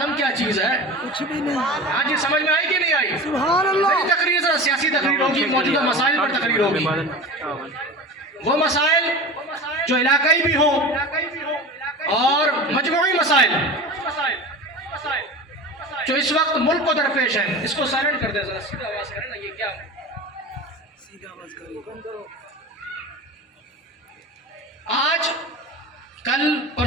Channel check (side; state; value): both; normal; correlation 0.32